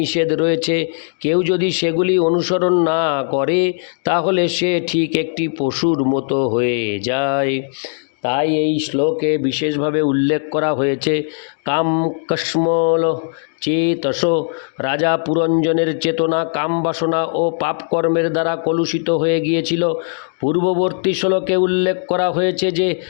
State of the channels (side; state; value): right; silent; digital silence